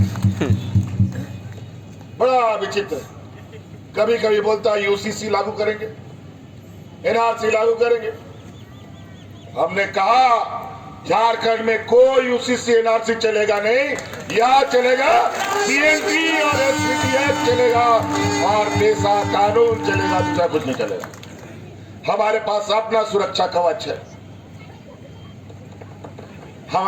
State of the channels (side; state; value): both; identical; correlation 1.00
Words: बड़ा विचित्र। कभी कभी बोलता है यूसीसी लागू करेंगे, एनआरसी लागू करेंगे। हमने कहा झारखंड में कोई यूसीसी एनआरसी चलेगा नहीं, यहां चलेगा सीएनटी और एसपीटीएफ चलेगा और पेशा कानून चलेगा, दूसरा कुछ नहीं चलेगा। हमारे पास अपना सुरक्षा कवच है।